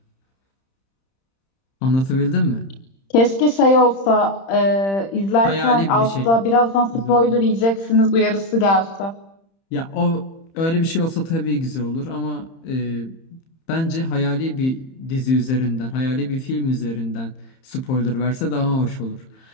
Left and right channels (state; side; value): late; right; 31 ms